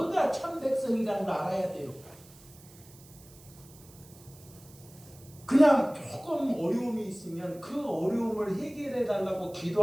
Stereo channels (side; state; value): right; noise; hiss, 23 dB below the sound